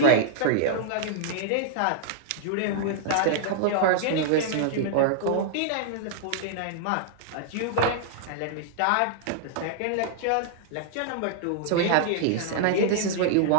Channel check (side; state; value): both; different; correlation -0.01